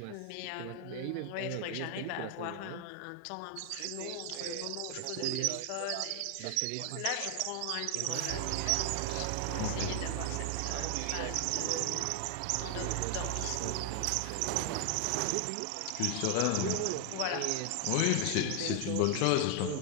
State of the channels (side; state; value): both; different; correlation 0.00